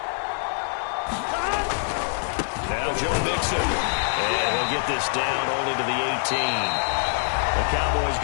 Now Joe Mixon. And he'll get this down only to the 18. The Cowboys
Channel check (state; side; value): silent; right; digital silence